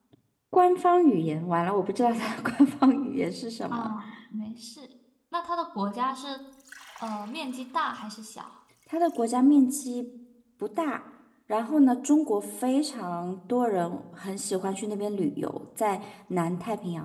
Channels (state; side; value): identical; both; correlation 1.00